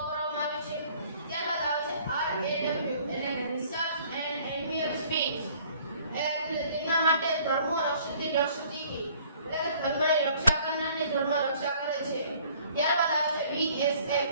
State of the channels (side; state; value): both; inverted; correlation -0.56